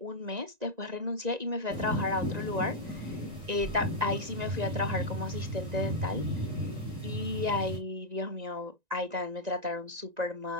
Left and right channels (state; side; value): late; left; 1.9 ms